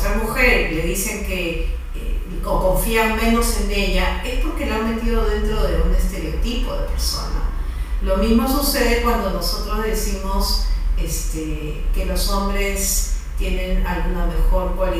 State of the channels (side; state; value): both; identical; correlation 1.00